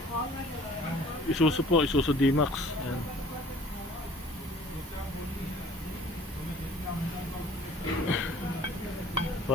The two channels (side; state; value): both; normal; correlation 0.51